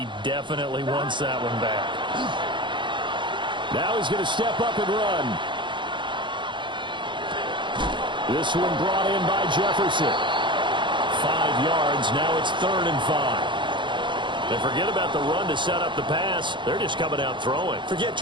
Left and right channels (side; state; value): left; late; 0.23 ms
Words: definitely wants that one back. Now he's going to step up and run. This one brought in by Jefferson. 5 yards. Now it's 3rd and 5. And forget about the run to set up the pass. They're just coming out throwing. Forget